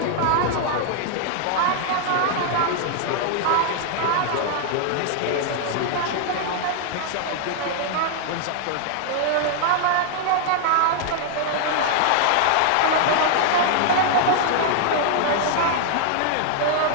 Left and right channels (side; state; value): both; different; correlation -0.01